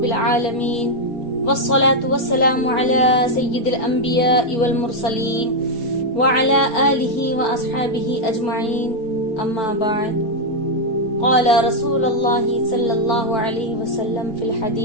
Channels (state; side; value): late; right; 4.5 ms